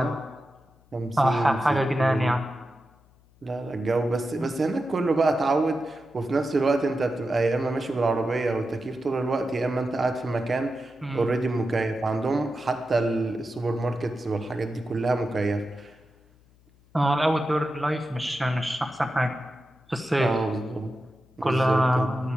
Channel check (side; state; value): left; noise; hum, 30 dB below the sound